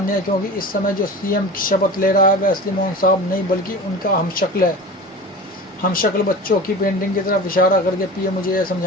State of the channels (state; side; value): normal; both; correlation 0.34